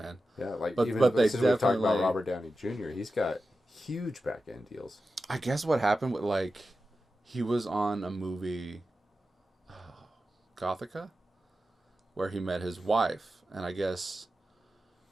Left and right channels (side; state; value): both; normal; correlation 0.92